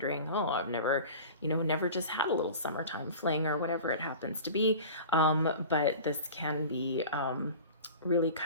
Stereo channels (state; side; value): inverted; both; correlation -0.37